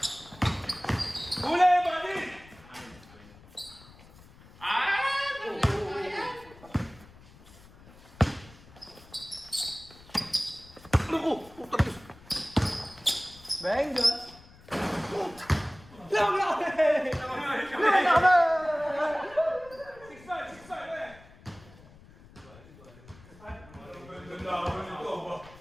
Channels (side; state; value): left; noise; rumble, 22 dB below the sound